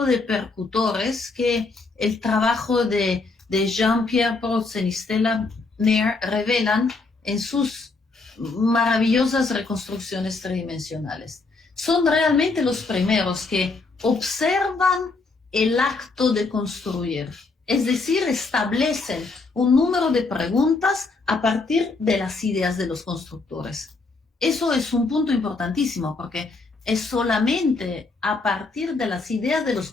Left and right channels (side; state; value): right; quieter; 3.8 dB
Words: de percutores que el trabajo de Jean-Pierre Protzen y Stella Nair revelan en sus maravillosas reconstrucciones tridimensionales. Son realmente los primeros que observan el acto de construir, es decir, establecen un número de preguntas a partir de las ideas de los constructores. Eso es un punto importantísimo porque es solamente a partir de las ideas de los